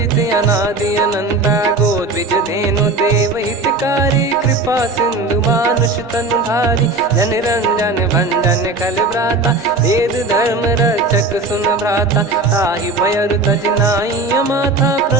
अनादि अनंता गोद्विज धेनु देव हितकारी कृपा सिंधु मानुष तनुधारी जन रंजन भंजन खल भ्राता वेद धर्म रक्षक सुन भ्राता ताहि भयर तज नाई माथा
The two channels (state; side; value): quieter; left; 3.3 dB